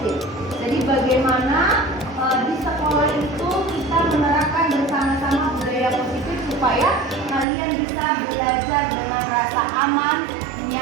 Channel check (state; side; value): drops out; left; at 7.5 s